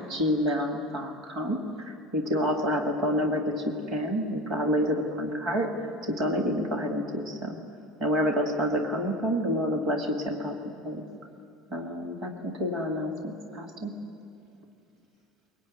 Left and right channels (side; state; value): both; normal; correlation 0.30